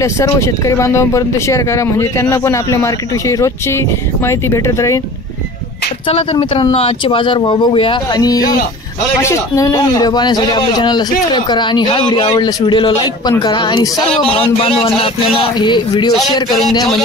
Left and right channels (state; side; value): normal; both; correlation 0.41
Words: सर्व शेतकरी बांधवांपर्यंत शेअर करा म्हणजे त्यांना पण आपल्या मार्केटविषयी रोजची माहिती भेटत राहील। चला तर मित्रांनो आजचे बाजार भाव बघूया आणि असेच नवीन व्हिडिओ पाहण्यासाठी आपल्या चॅनलला सबस्क्राइब करा आणि हा व्हिडिओ आवडल्यास व्हिडिओला लाईक पण करा आणि सर्व बांधवांना आपल्याला हे व्हिडिओ शेअर करून द्या